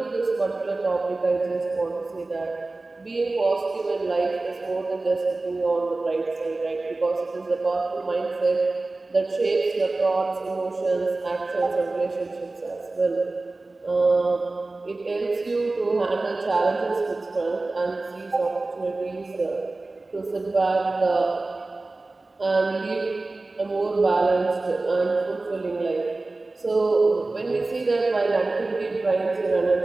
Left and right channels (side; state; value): left; quieter; 3.2 dB